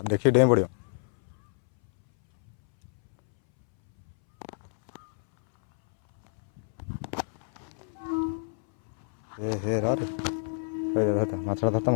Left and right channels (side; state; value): right; silent; 60 dB below the other